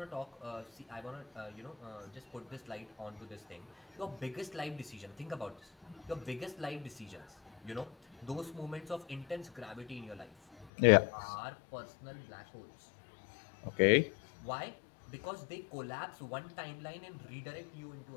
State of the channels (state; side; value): drops out; right; at 10.7 s